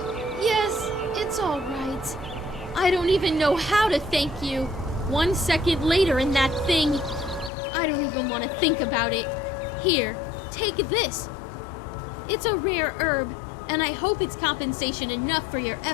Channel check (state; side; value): drops out; right; at 7.5 s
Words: Yes, it's all right. I don't even know how to thank you. 1 second later in that thing. I don't even want to think about it. Here, take this. It's a rare herb, and I hope it's compensation enough for your